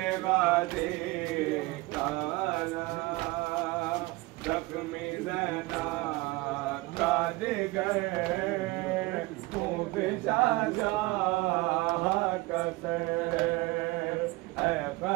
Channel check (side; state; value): left; quieter; 22.0 dB